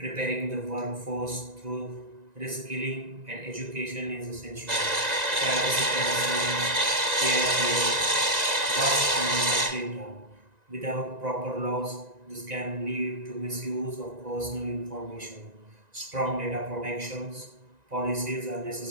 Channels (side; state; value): left; late; 1.9 ms